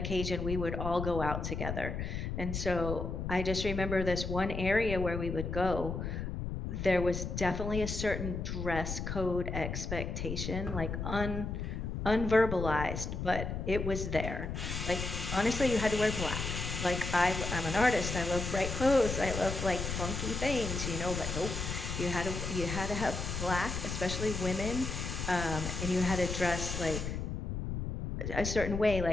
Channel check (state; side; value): noise; left; rumble, 4 dB below the sound